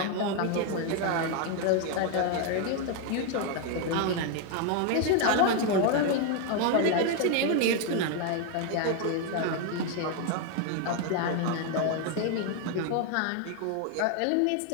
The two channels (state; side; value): different; both; correlation 0.01